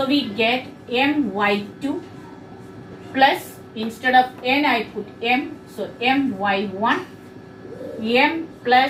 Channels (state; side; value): identical; both; correlation 1.00